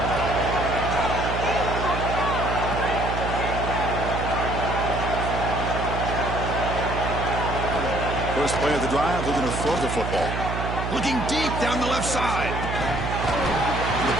First play of the drive, looking to throw the football. Looking deep down the left side. The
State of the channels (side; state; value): right; noise; hum, 3 dB below the sound